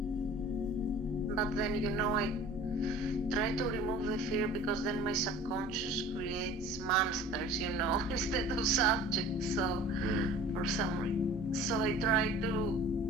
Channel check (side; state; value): both; normal; correlation 0.44